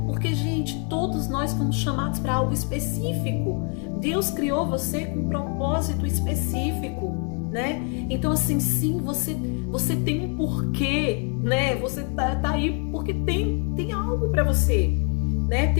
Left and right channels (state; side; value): quieter; right; 39.7 dB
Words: Porque, gente, todos nós fomos chamados para algo específico. Deus criou você com um propósito específico, né? Então, assim, sim, você tem um porquê, né? Você tá aí porque tem algo para você, né?